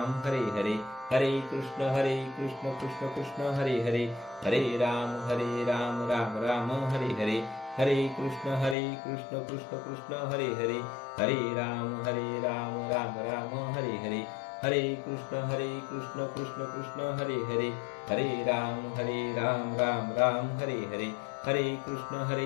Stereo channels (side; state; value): right; drops out; at 8.8 s